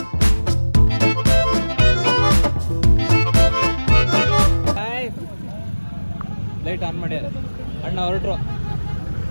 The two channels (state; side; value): inverted; both; correlation -1.00